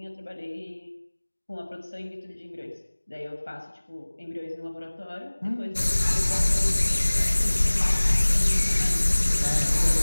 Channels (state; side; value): inverted; both; correlation -1.00